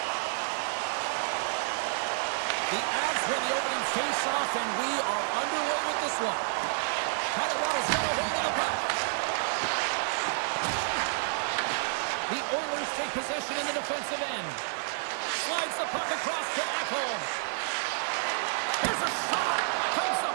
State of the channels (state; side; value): silent; left; digital silence